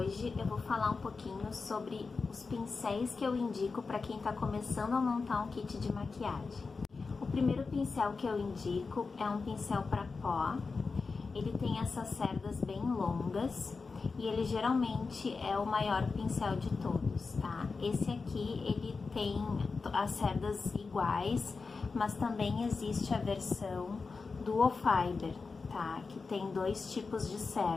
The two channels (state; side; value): quieter; right; 4.4 dB